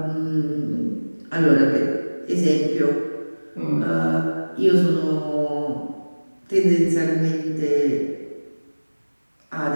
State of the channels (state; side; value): inverted; both; correlation -1.00